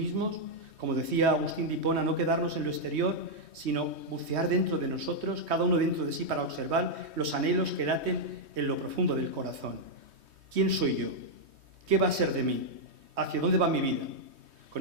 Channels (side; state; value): left; late; 3.2 ms